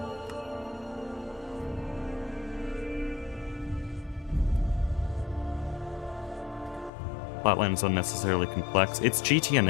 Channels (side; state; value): right; drops out; at 6.9 s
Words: Platline is unnecessarily complex. It's